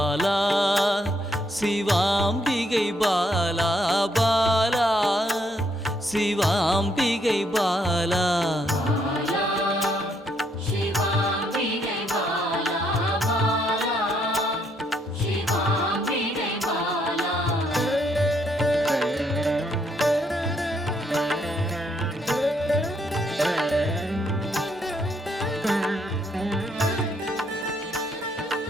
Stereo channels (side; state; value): both; normal; correlation 0.72